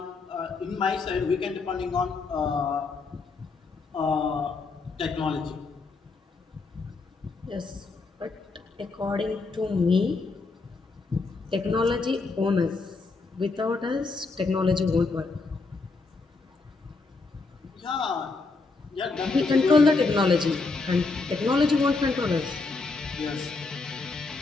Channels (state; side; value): quieter; right; 3.9 dB